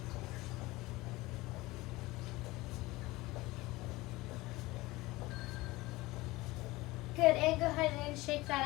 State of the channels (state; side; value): quieter; right; 20.3 dB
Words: Good, and go ahead and shake